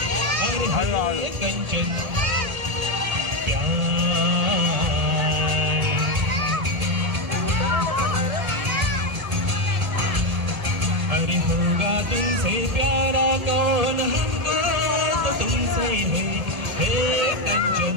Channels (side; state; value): left; late; 1.8 ms